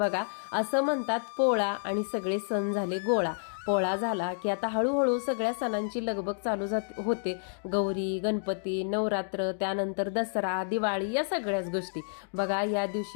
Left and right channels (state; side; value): silent; right; digital silence